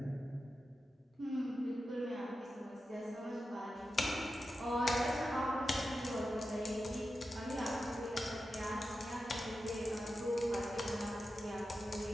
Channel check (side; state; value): both; normal; correlation 0.91